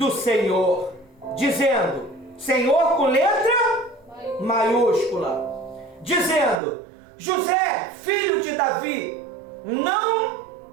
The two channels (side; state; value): left; drops out; at 6.6 s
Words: Senhor, dizendo, Senhor com letra maiúscula, dizendo, José, filho de Davi, não